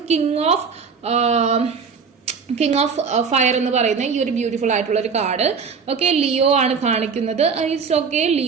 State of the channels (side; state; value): left; quieter; 5.7 dB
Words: കിങ് ഓഫ് ഫയർ എന്ന് പറയുന്ന ഈ ഒരു ബ്യൂട്ടിഫുൾ ആയിട്ടുള്ള ഒരു കാർഡ്. ഓക്കെ, ലിയോ ആണ് കാണിക്കുന്നത്. It's okay,